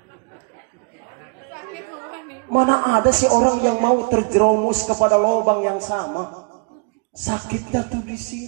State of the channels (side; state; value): left; quieter; 34.5 dB